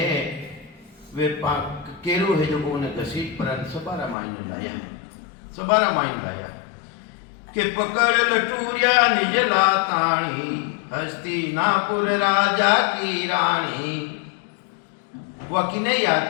वे केरु है जो को उन्हें घसीट पर सभा रामायण लाया, सभा रामायण लाया के पकड़ लटूरिया निज लाताणी, हस्तिनापुर राजा की रानी। वह किने याद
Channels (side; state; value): right; drops out; at 4.2 s